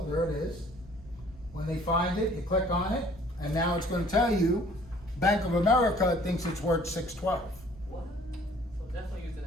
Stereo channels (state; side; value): normal; both; correlation 0.55